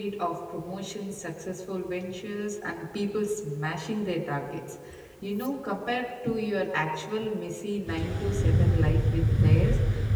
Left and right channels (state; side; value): identical; both; correlation 1.00